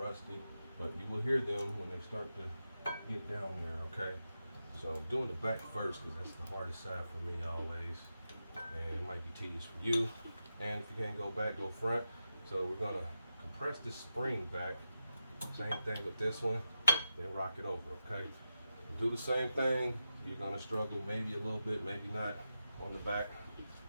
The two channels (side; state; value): both; inverted; correlation -0.89